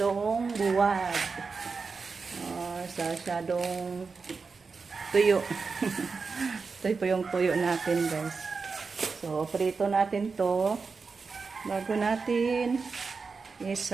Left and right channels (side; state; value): left; quieter; 4.7 dB